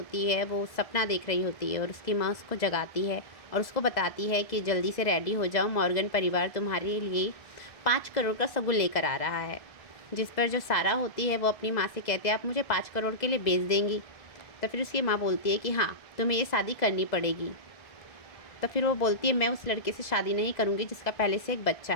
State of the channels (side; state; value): right; late; 1.6 ms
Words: है वो सपना देख रही होती है और उसकी माँ उसको जगाती है और उसको बताती है कि जल्दी से रेडी हो जाओ, मॉर्गन परिवार तुम्हारे लिए 5 करोड़ का सगुन लेकर आ रहा है। जिस पर जो सारा होती है वो अपनी माँ से कहती है आप मुझे 5 करोड़ के लिए बेच देंगी। तो फिर उसकी माँ बोलती है कि हाँ, तुम्हें ये शादी करनी पड़ेगी। तो फिर वो बोलती है मैं उस लड़के से शादी नहीं करूँगी जिसका पहले से एक बच्चा